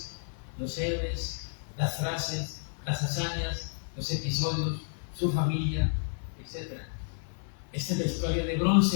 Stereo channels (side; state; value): right; silent; digital silence